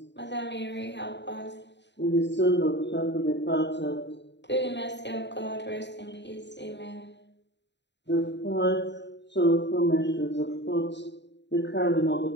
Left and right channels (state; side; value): late; right; 0.51 ms